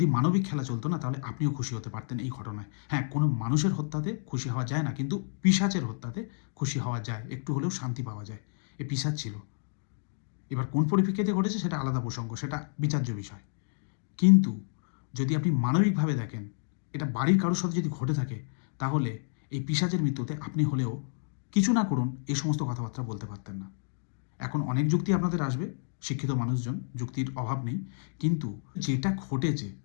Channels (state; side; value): silent; right; digital silence